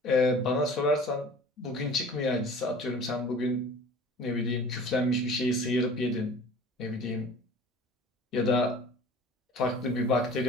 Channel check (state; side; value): normal; both; correlation 0.44